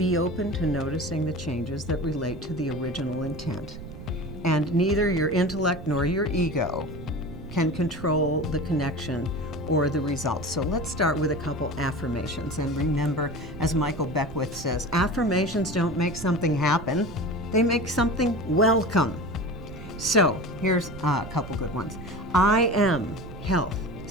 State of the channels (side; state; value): right; noise; rumble, 12 dB below the sound